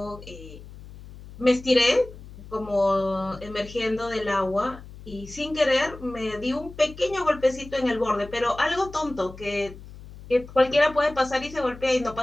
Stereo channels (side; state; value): left; noise; hum, 17 dB below the sound